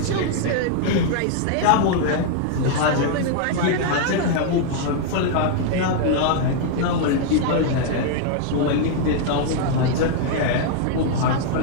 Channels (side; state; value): both; different; correlation 0.00